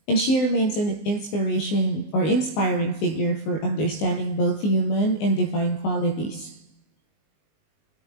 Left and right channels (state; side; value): late; right; 19 ms